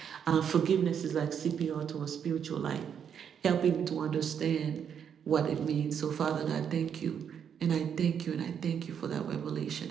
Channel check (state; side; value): quieter; left; 8.0 dB